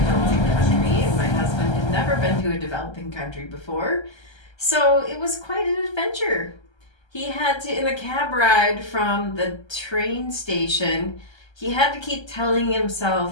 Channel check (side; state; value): right; late; 1.3 ms